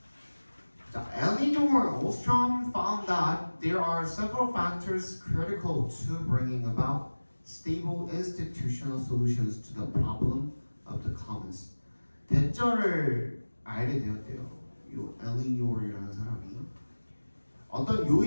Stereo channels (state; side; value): inverted; both; correlation -1.00